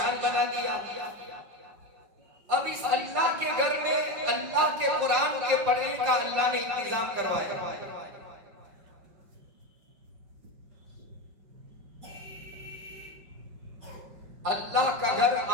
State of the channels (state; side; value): late; left; 5.3 ms